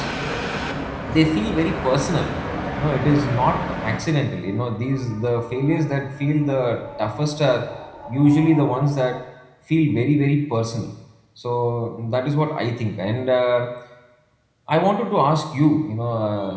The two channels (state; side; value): identical; both; correlation 1.00